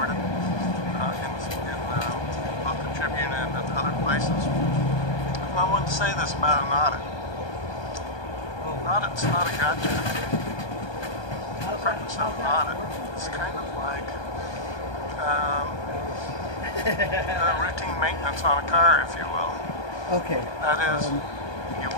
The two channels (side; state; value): right; late; 1.2 ms